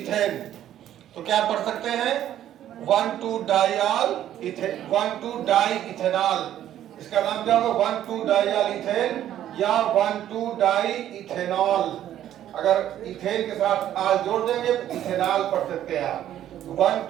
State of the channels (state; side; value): quieter; left; 11.6 dB